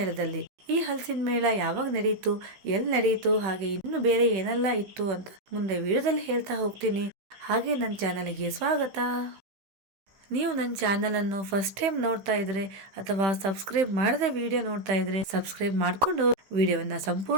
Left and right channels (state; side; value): late; left; 15 ms